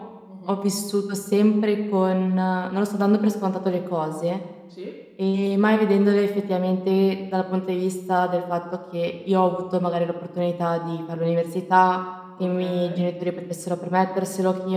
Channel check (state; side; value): identical; both; correlation 1.00